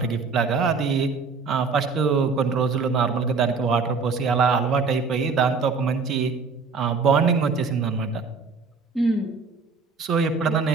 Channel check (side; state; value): left; quieter; 4.8 dB